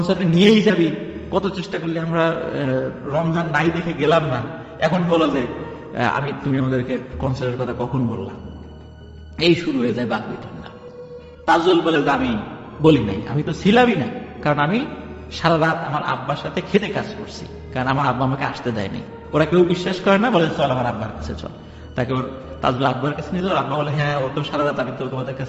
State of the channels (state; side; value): identical; both; correlation 1.00